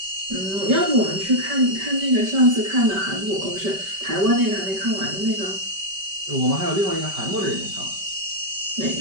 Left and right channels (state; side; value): late; left; 5.1 ms